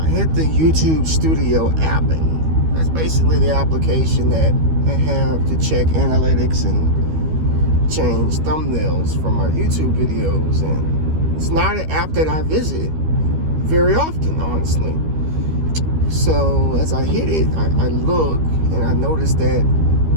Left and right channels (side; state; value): left; late; 13 ms